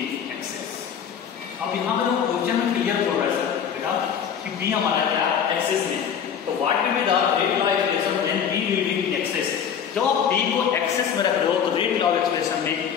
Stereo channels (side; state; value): right; quieter; 8.0 dB